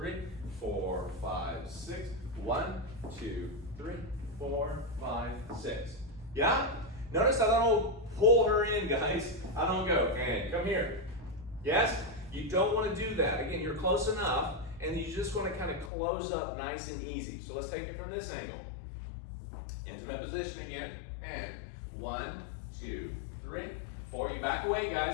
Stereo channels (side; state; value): right; drops out; at 15.9 s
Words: 4, 5, 6, 1, 2, 3, 4, 5, 6. Yeah? Notice I don't pull her in, guys. I don't go, and come here. Yes? You don't want to do that. Again, you're close enough, and you just want to kind of close up nice and easy. So let's take it from this angle. Intimate position again, and 1, 2, 3, 4. You back away,